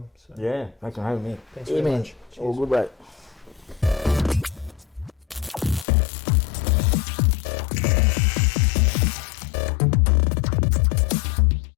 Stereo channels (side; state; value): right; drops out; at 5.9 s